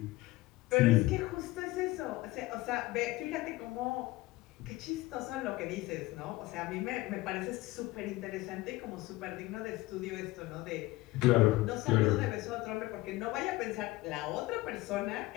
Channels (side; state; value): right; quieter; 18.9 dB